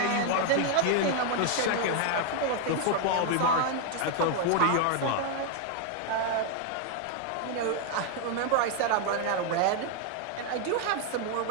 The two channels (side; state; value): both; different; correlation 0.00